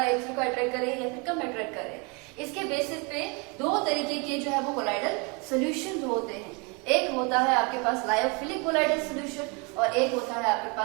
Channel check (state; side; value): quieter; left; 31.1 dB